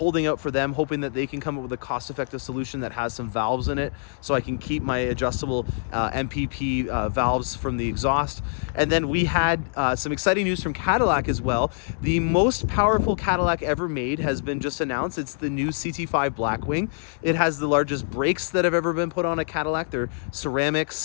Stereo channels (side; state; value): right; silent; digital silence